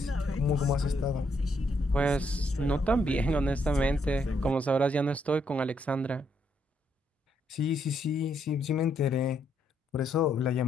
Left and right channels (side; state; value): both; normal; correlation 0.75